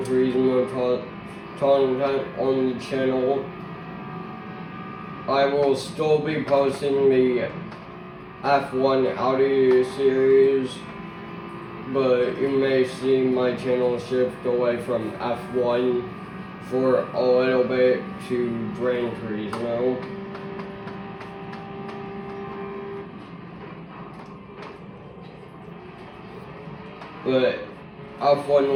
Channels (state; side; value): identical; both; correlation 1.00